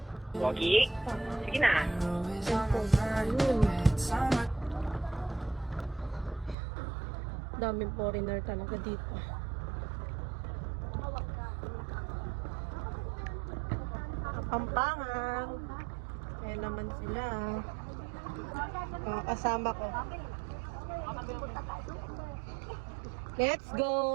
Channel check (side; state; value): left; drops out; at 6.6 s